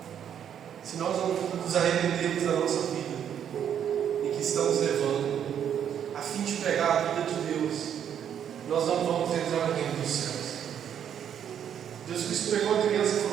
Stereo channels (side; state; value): left; quieter; 9.0 dB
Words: Se nós não nos arrependermos da nossa vida em que estamos levando, a fim de pregar a vida de Deus, nós não vamos entrar no reino dos céus. Jesus Cristo pegou a criança e